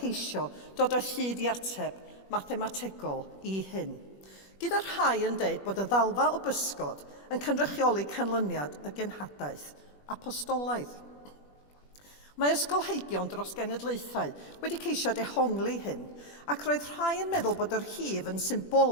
dod o hyd i ateb mathemategol i hyn. Gyda'r rhai yn deud bod y ddalfa o bysgod yn cynrychioli canlyniad y genhadaeth apostolaidd. Mae ysgolheigion dros genedlaethau wedi ceisio dehongli hyn, ac roedd rhai yn meddwl bod yr hif yn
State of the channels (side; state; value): right; late; 21 ms